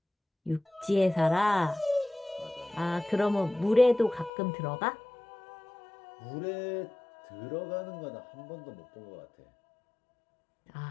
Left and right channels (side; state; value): right; drops out; at 4.3 s